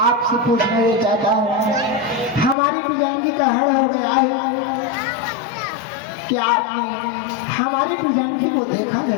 आपसे पूछना ये चाहता हूँ, हमारी पिजांगी का हरण हो गया है, क्या आपने हमारी पिजांगी को देखा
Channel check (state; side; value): drops out; right; at 2.6 s